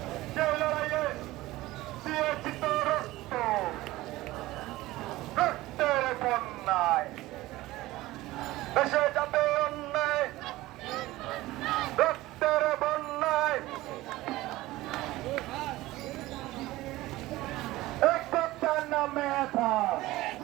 দেশে যাবে অন্যায় রক্তের বন্যায় একটার নামে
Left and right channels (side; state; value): left; quieter; 17.9 dB